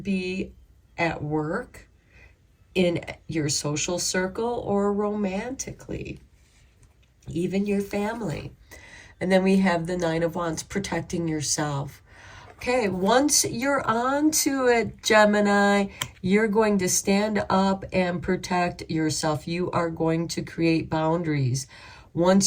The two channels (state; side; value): identical; both; correlation 1.00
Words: be at work, in your social circle, or romantically, even your family. And then we have the Nine of Wands, protecting yourself. Okay, once you're on to it, Gemini, you're going to stand up and protect yourself. You are going to create boundaries.